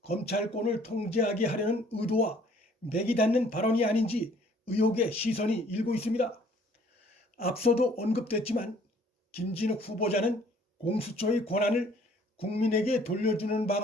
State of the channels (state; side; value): normal; both; correlation 0.58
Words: 검찰권을 통제하게 하려는 의도와 맥이 닿는 발언이 아닌지 의혹의 시선이 일고 있습니다. 앞서도 언급됐지만 김진욱 후보자는 공수처의 권한을 국민에게 돌려주는